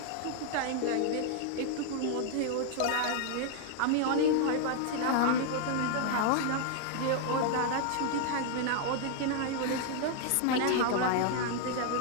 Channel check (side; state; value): both; different; correlation 0.00